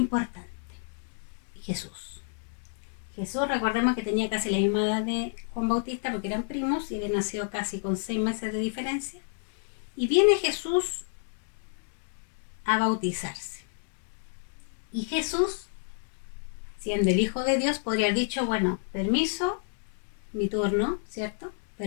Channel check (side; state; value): right; silent; digital silence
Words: Jesús. Jesús, recordemos que tenía casi la misma edad de Juan Bautista porque eran primos y había nacido casi con 6 meses de diferencia. Y viene Jesús a bautizarse. Y Jesús, siendo el Hijo de Dios, podría haber dicho, bueno, permiso, mi turno, ¿cierto?